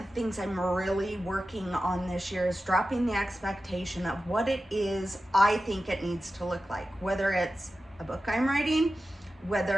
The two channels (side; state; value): both; normal; correlation 0.93